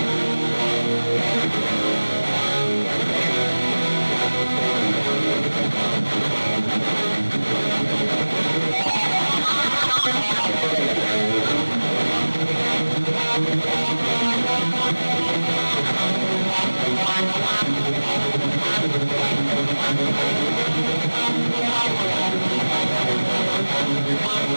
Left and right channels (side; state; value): both; inverted; correlation -1.00